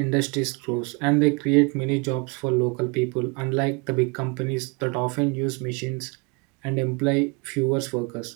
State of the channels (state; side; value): quieter; left; 31.2 dB